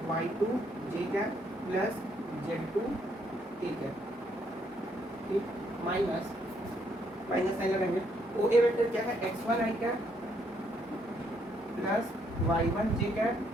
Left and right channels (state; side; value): normal; both; correlation 0.72